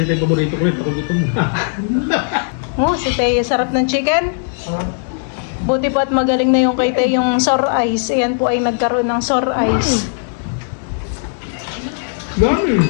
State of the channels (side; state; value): right; silent; digital silence